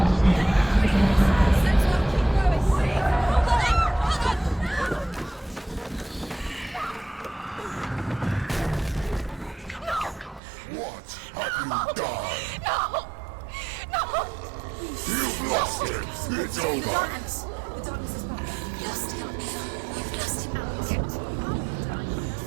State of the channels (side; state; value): left; drops out; at 10.4 s